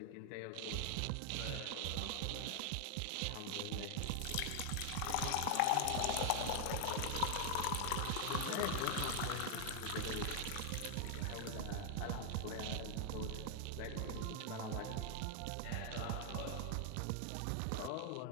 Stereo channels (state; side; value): different; both; correlation 0.00